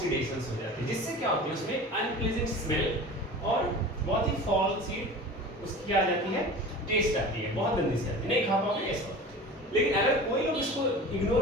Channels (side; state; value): both; normal; correlation 0.37